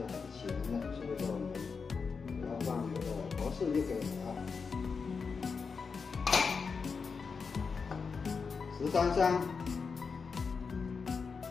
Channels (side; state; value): right; quieter; 5.2 dB